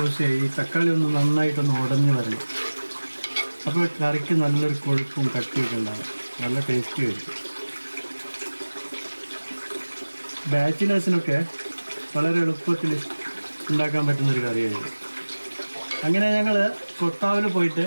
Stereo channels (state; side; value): inverted; both; correlation -1.00